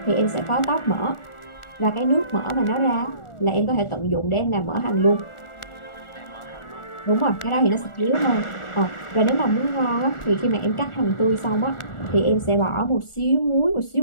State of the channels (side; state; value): right; late; 1.4 ms